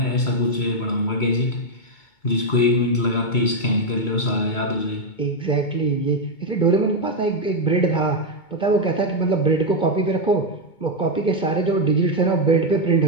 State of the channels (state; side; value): late; right; 2.2 ms